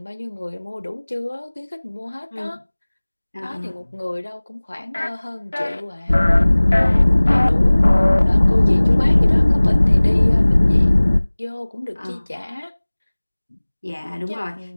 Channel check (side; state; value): both; inverted; correlation -1.00